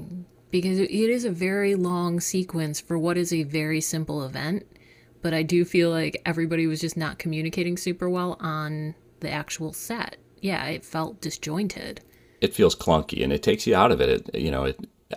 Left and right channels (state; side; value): identical; both; correlation 1.00